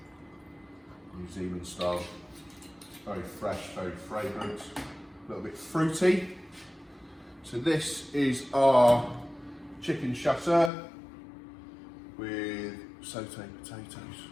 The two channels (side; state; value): right; drops out; at 10.7 s